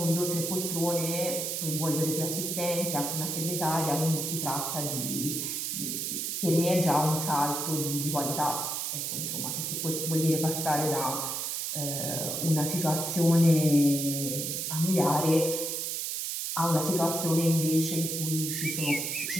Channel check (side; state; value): right; noise; hiss, 2 dB below the sound